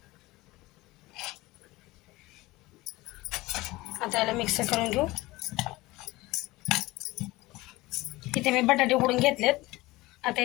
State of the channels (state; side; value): quieter; right; 20.1 dB